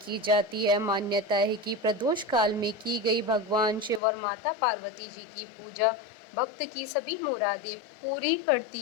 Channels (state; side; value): drops out; right; at 4.0 s